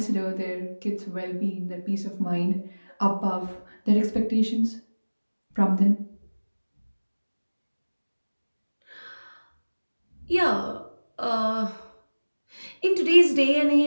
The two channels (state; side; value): inverted; both; correlation -1.00